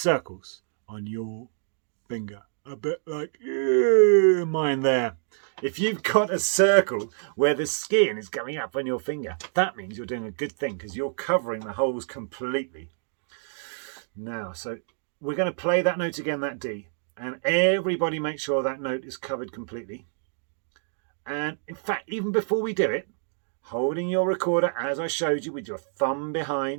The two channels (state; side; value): silent; left; digital silence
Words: on your finger. A bit like mine there. If you've got a circle where the skin is going up on your finger, that means you're doing a good thing because you're covering the holes completely. Now, so we're going to play that note again, that D, and everybody make sure that note is covered completely. And in fact, even before we do it, holding your recorder as I showed you with your thumb